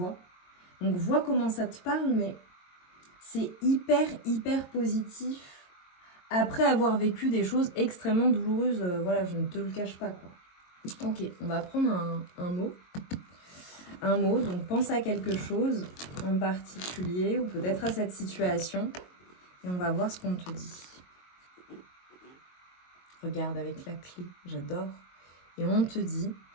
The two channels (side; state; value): right; late; 22 ms